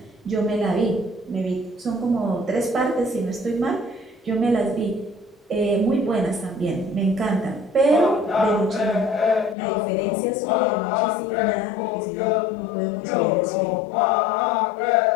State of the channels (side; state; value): right; drops out; at 9.6 s